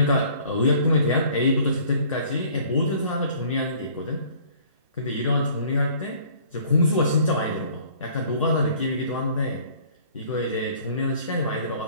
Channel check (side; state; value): both; inverted; correlation -0.54